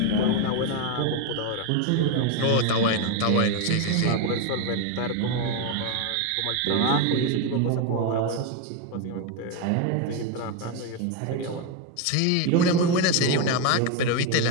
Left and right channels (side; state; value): both; different; correlation 0.02